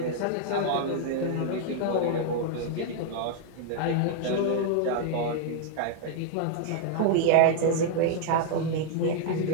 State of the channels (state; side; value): different; both; correlation 0.00